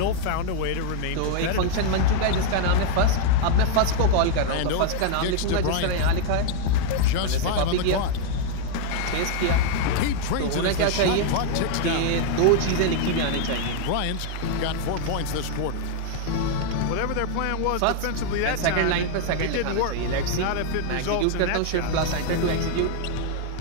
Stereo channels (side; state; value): both; different; correlation 0.00